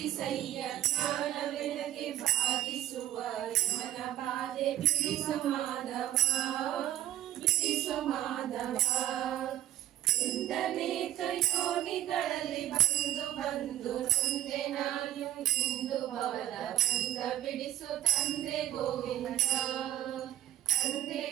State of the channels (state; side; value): quieter; left; 13.3 dB